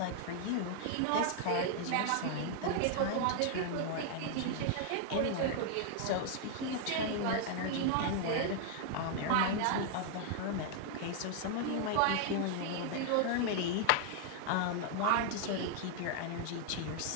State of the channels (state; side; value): different; both; correlation 0.00